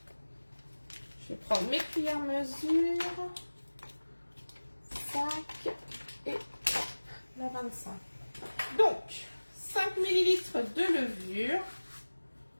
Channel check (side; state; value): both; inverted; correlation -1.00